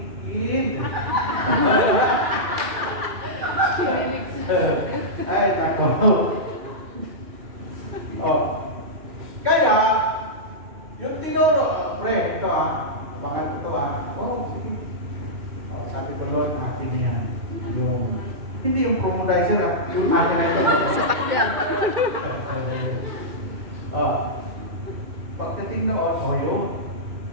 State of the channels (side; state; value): left; late; 2.4 ms